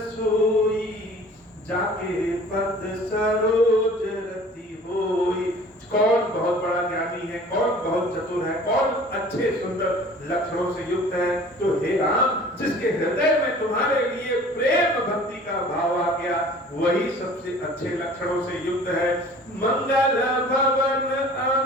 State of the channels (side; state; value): both; normal; correlation 0.47